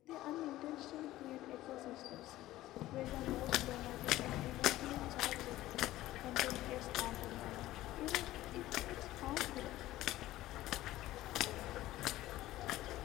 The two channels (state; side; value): quieter; right; 15.7 dB